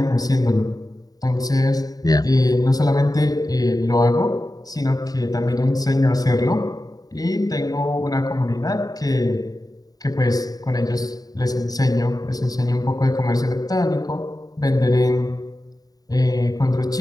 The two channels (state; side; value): late; right; 0.18 ms